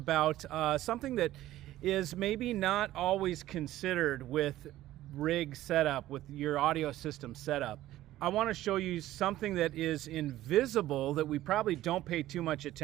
something that is maybe not always considered with rig setup, with your audio system setup. I want to show you something that is invisible that we probably don't pay too much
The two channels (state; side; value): quieter; left; 14.7 dB